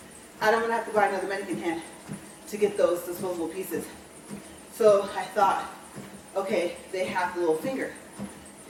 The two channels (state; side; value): identical; both; correlation 1.00